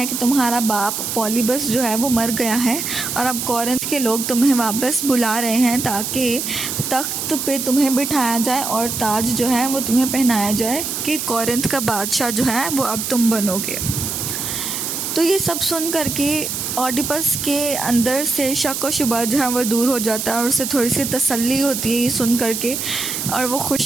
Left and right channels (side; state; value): right; noise; hiss, 3 dB below the sound